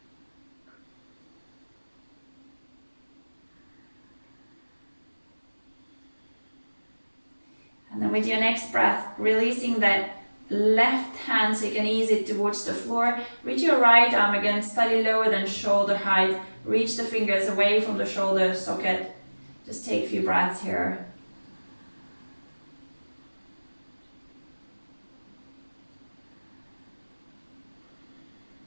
And then with your next breath, releasing that left hand so you can ease it towards the floor. Reach your right arm again, slightly lower than shoulder height. Reach the fingers away from the shoulder socket. Just take a few breaths here.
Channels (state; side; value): inverted; both; correlation -1.00